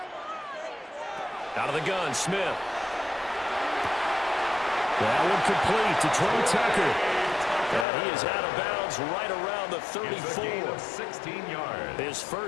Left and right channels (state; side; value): drops out; right; at 7.9 s